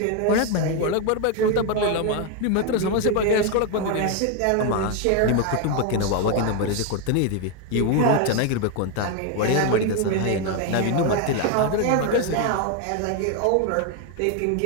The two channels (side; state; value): both; different; correlation 0.01